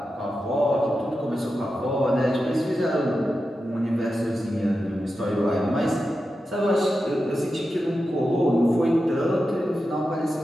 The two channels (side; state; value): both; normal; correlation 0.90